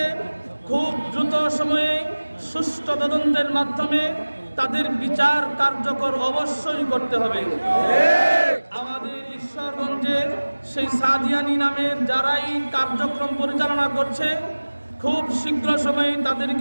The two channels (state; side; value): inverted; both; correlation -1.00